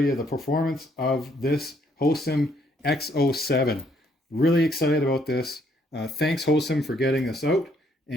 the performance of this Hosim X07. Really excited about this. Thanks, Hosim, for getting this out.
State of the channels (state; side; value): normal; both; correlation 0.69